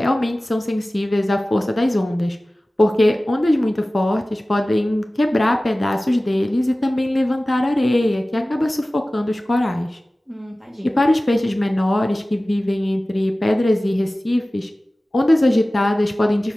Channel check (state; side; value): normal; both; correlation 0.97